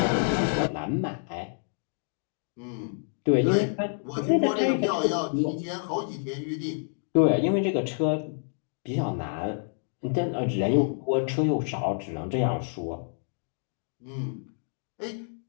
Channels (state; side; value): silent; right; digital silence